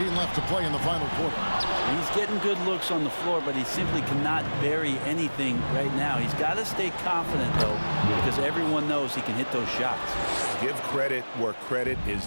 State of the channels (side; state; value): both; inverted; correlation -1.00